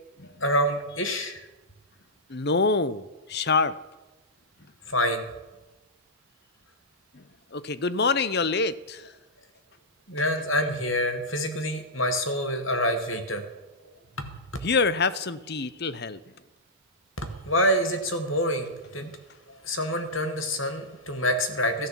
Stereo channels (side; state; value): both; normal; correlation -0.12